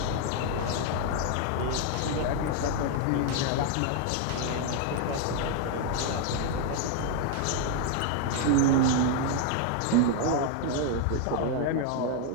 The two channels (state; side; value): different; both; correlation 0.00